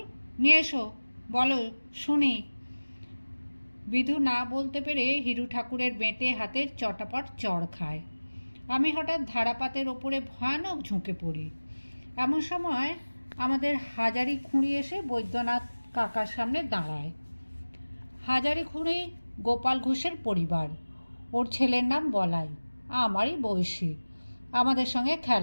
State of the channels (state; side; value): inverted; both; correlation -1.00